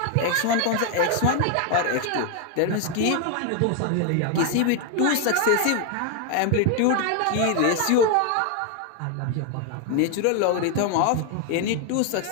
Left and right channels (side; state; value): both; different; correlation 0.01